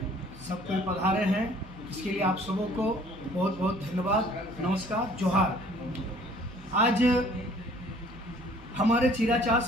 सब कोई पधारे हैं। इसके लिए आप सबों को बहुत बहुत धन्यवाद, नमस्कार, जोहार। आज हमारे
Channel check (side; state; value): right; noise; hum, 19 dB below the sound